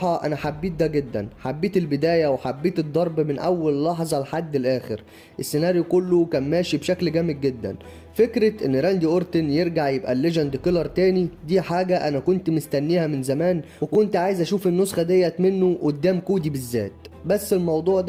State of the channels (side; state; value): both; identical; correlation 1.00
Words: انا حبيت ده جدا. حبيت البداية وحبيت الضرب من اول لحظة لحد الاخر. السيناريو كله كان ماشي بشكل جامد جدا. فكرة ان راندي اورتن يرجع يبقى الليجند كيلر تاني دي حاجة انا كنت مستنيها من زمان، وكنت عايز اشوف النسخة ديت منه قدام كودي بالذات. بس الموضوع